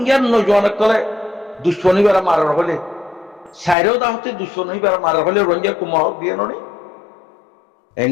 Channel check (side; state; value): right; drops out; at 3.8 s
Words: নজওয়ান কলে দুশ্মনীবার মারার হলে সাইরেও দাহতি দুশ্মনীবার মারার হলে রোহিঙ্গা কুমর হক দিয়ে নি